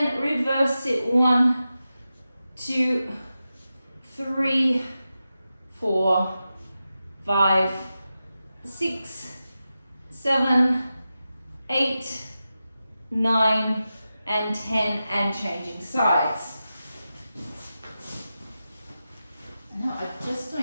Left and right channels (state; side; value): inverted; both; correlation -0.92